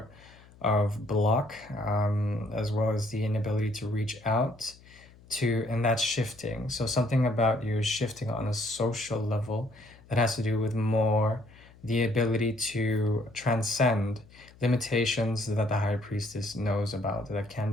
of block, as well as the inability to reach out to, and that's shifting. So something about you is shifting on a social level that has to do with more the ability to transcend limitations that the high priestess knows about, that can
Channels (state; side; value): noise; left; hum, 24 dB below the sound